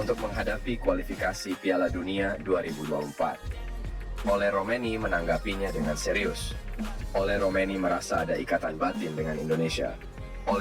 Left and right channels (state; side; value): identical; both; correlation 1.00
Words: menghadapi kualifikasi Piala Dunia 2024. Ole Romeni menanggapinya dengan serius. Ole Romeni merasa ada ikatan batin dengan Indonesia.